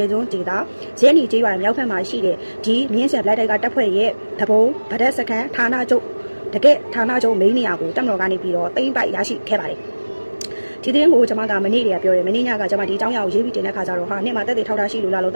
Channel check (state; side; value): inverted; both; correlation -1.00